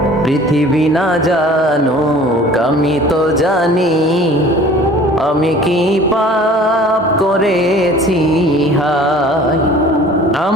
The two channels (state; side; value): normal; both; correlation 0.48